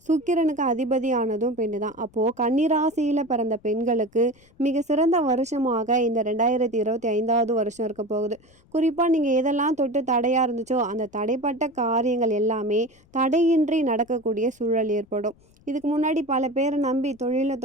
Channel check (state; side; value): noise; left; rumble, 30 dB below the sound